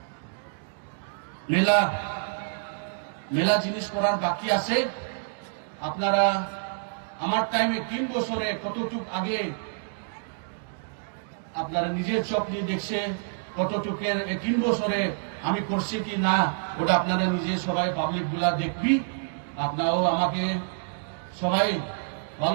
মেলা জিনিস করার বাকি আছে। আপনারা আমার টাইমে 3 বছরে কতটুক আগে আপনারা নিজের চোখ দিয়ে দেখছে, কতটুকের 3 বছরে আমি করছি কি না ওটা আপনারা নিজে সবাই পাবলিক গুলা দেখবি। আপনারাও আমাকে সবাই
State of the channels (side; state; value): left; silent; digital silence